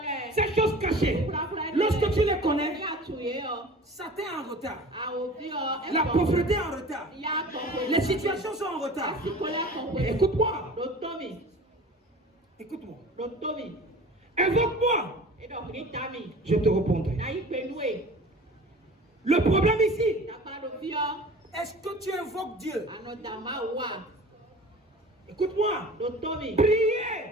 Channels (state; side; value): normal; both; correlation 0.41